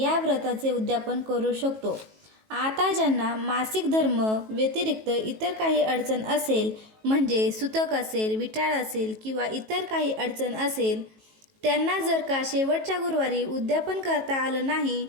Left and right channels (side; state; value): left; late; 18 ms